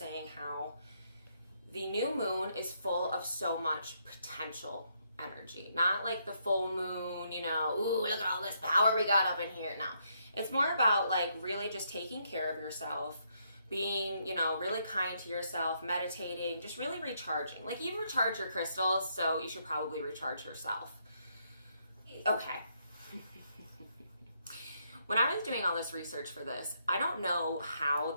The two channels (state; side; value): inverted; both; correlation -0.75